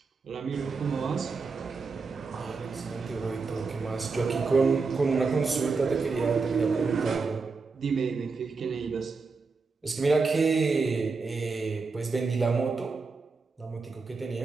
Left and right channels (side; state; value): left; quieter; 4.5 dB